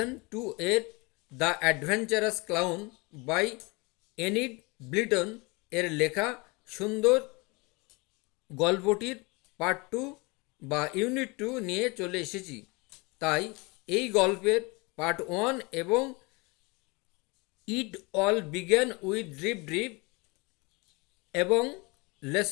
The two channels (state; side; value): quieter; right; 27.1 dB